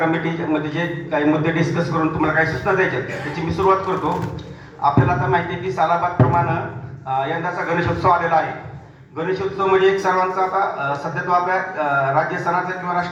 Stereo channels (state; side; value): identical; both; correlation 1.00